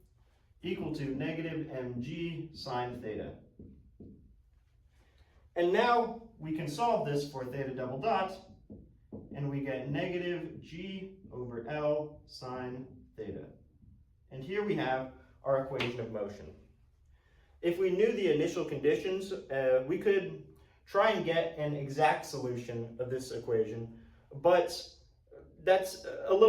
equal to negative mg sine theta. And now we can solve this for theta double dot, and we get negative g over L sine theta. And here we have our equation of motion. If we knew the initial conditions, we could try and get an exact solution of this equation, but that's a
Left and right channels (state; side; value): identical; both; correlation 1.00